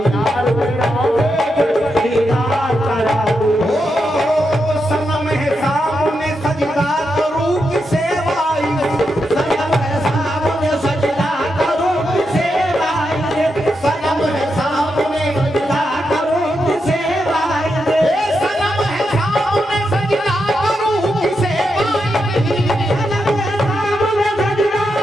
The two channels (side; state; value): both; normal; correlation 0.85